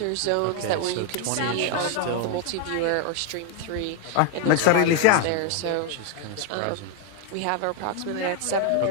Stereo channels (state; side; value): different; both; correlation 0.01